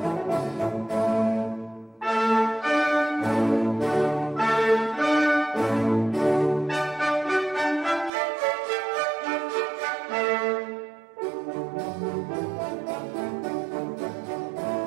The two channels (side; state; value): left; drops out; at 8.1 s